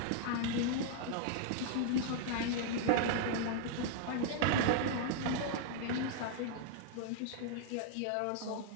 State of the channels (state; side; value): different; both; correlation -0.01